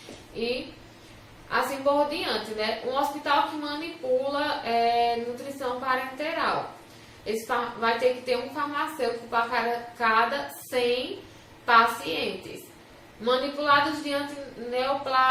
E assim por diante, né? Um hospital que manipula nutrição parenteral. Vai ter que ter um farmacêutico para cada 100 pacientes. Manipulados de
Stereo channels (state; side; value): identical; both; correlation 1.00